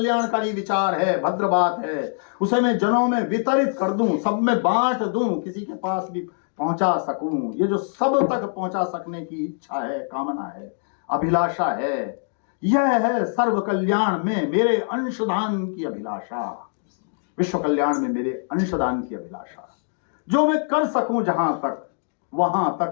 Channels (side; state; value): right; silent; digital silence